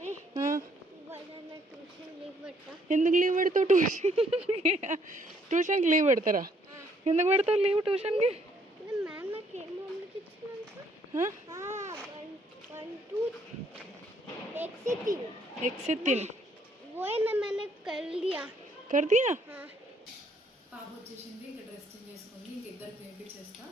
ఎందుకు లీవ్ పెడతావు? ట్యూషన్కి లీవ్ పెడతారా? ఎందుకు పెడతావు లీవ్ ట్యూషన్కి? कर दिया. పాప వచ్చేసింది, ఇంకా డ్రెస్ చేంజ్ చేసుకుంది. ఇంక ఇద్దరికి తినిపించేస్తా.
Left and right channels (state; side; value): normal; both; correlation 0.67